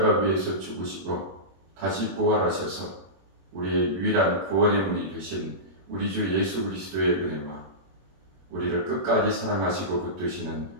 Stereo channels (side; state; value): left; late; 21 ms